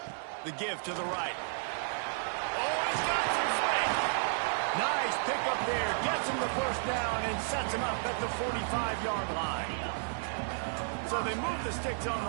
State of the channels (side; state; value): left; silent; 56 dB below the other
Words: The give to the right. Oh, he's got some space. Nice pickup there. Gets him the 1st down and sets him up at the 45-yard line. So they move the sticks on